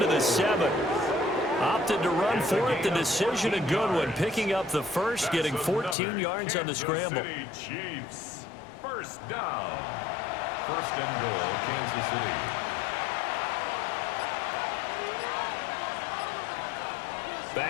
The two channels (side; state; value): right; drops out; at 6.0 s